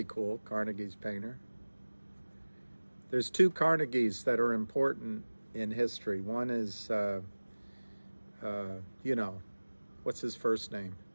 cool, Carnegie's Painter. There's 2 Carnegies that are important in history. One is, you know, what's his first name?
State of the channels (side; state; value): both; inverted; correlation -1.00